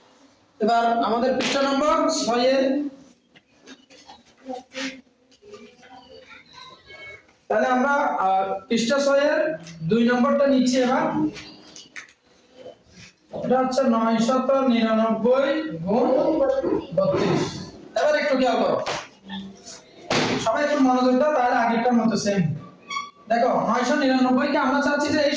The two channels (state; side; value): identical; both; correlation 1.00